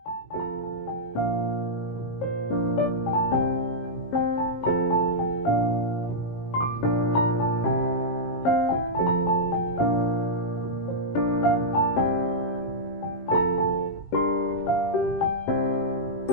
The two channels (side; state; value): right; late; 19 ms